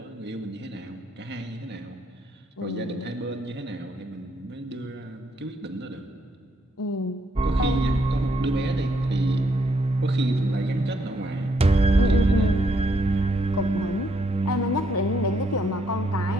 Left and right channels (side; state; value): both; normal; correlation 0.73